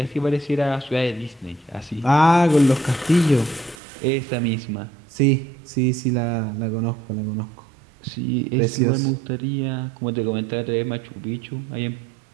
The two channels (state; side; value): drops out; left; at 3.8 s